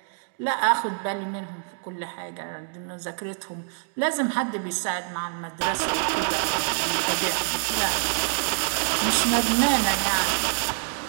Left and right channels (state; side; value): silent; left; 56 dB below the other